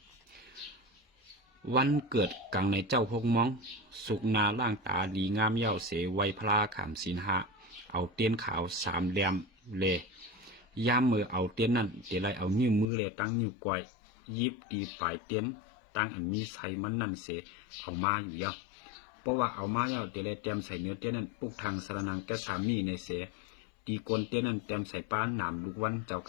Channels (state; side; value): drops out; right; at 12.9 s